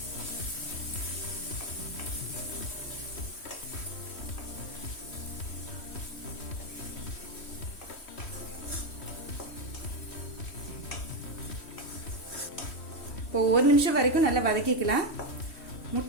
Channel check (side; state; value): right; late; 3.1 ms